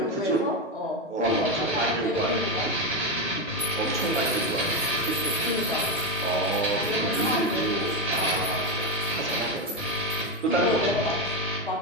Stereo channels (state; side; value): normal; both; correlation 0.11